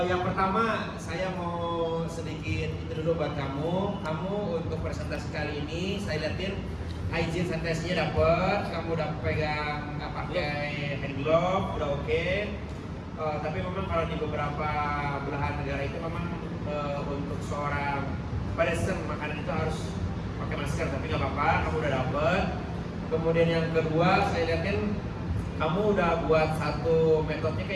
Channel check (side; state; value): both; identical; correlation 1.00